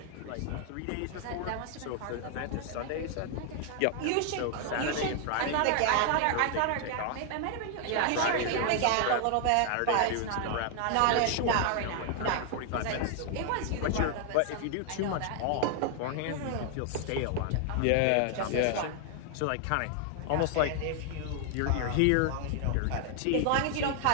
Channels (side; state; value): both; different; correlation 0.00